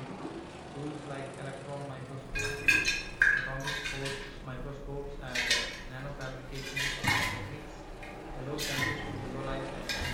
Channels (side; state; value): both; identical; correlation 1.00